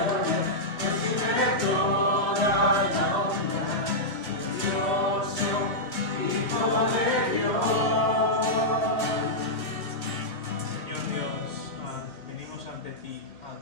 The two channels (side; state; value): right; late; 2.4 ms